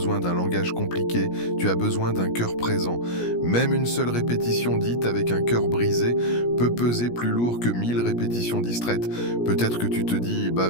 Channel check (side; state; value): right; late; 17 ms